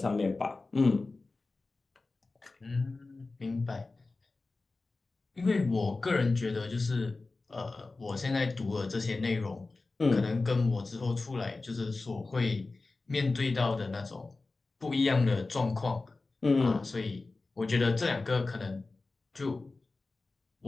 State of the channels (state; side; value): quieter; right; 3.5 dB